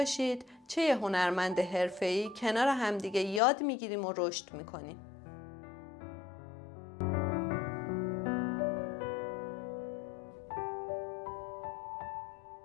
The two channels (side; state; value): right; drops out; at 3.4 s